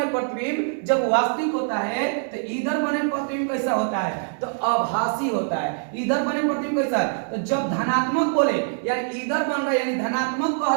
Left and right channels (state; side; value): silent; left; 63 dB below the other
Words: प्रतिबिंब जब वास्तविक होता है तो इधर बने प्रतिबिंब कैसा होता है? तो आभासी होता है। इधर बने प्रतिबिंब कैसा है? तो जब धनात्मक बोले यानी इधर बन रहा है यानी धनात्मक